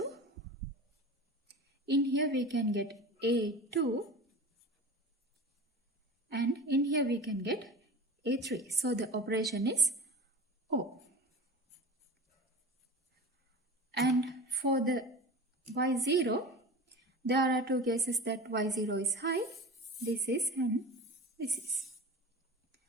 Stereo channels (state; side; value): normal; both; correlation 0.33